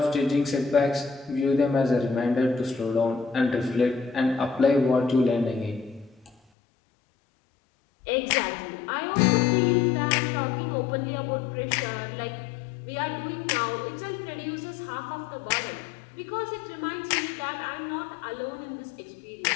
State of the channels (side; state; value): right; drops out; at 6.4 s